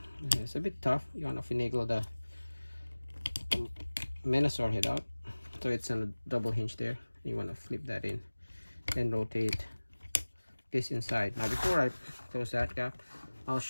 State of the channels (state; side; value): inverted; both; correlation -1.00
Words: It's a bit tough. You want to finagle the Menasor head out, so it's on a double hinge there. You want to flip that in, then rotate this inside. Now before I close that gap, I'll